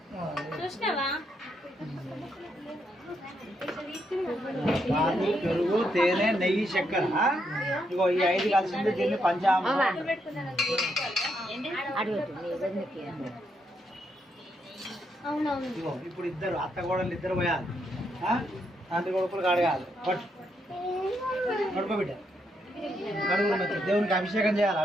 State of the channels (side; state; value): both; normal; correlation 0.78